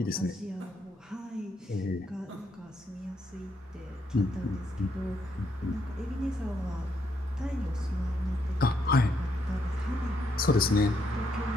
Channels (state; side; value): normal; both; correlation 0.76